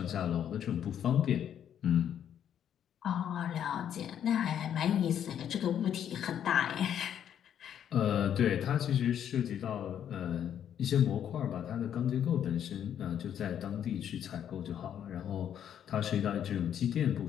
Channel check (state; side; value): quieter; right; 9.5 dB